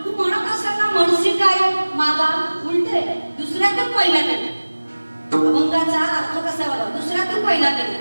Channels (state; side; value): inverted; both; correlation -1.00